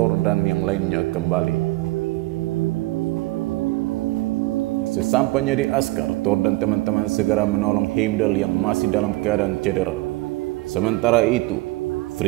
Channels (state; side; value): quieter; left; 20.6 dB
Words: dan yang lainnya kembali. Sesampainya di Asgard, Thor dan teman-teman segera menolong Heimdall yang masih dalam keadaan cedera. Sementara itu,